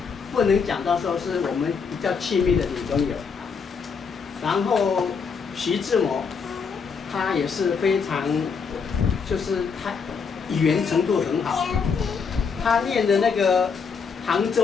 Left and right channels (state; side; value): quieter; right; 5.7 dB